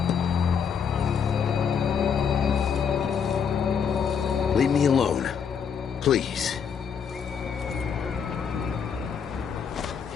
Leave me alone. Please.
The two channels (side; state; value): right; quieter; 7.0 dB